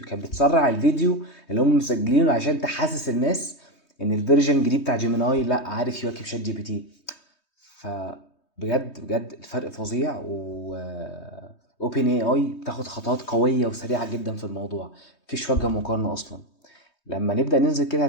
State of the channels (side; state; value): right; late; 3.2 ms